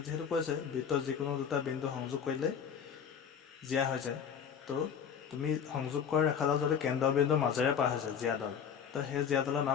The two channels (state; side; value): quieter; right; 7.5 dB